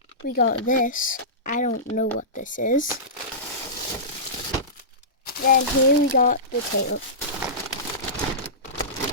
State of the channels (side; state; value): both; normal; correlation -0.20